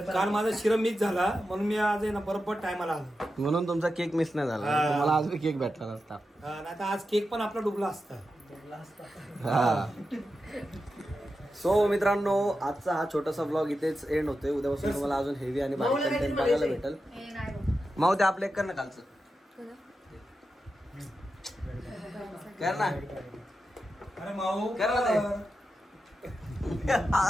काल माझा शिरा मिस झाला म्हणून मी आज आहे ना बरोबर टायमाला आलो. म्हणून तुमचा केक मिस नाही झाला. हा. तुम्हाला आज बी केक भेटला नसता. नाही तर आज केक पण आपला डुबला असता. हा. सो मित्रांनो आजचा हा छोटासा ब्लॉग इथेच एंड होतोय. उद्यापासून तुम्हाला अजून हेवी आणि भारी माऊला कंटेंट काहीतरी बघायला बोलायचंय. भेटेल. माऊ ते आपलं एक कर ना कालचं कर ना. अरे माऊ कर ना ते.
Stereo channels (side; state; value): both; normal; correlation 0.90